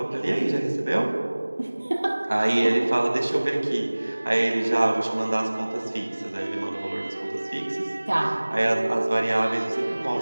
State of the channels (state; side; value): inverted; both; correlation -1.00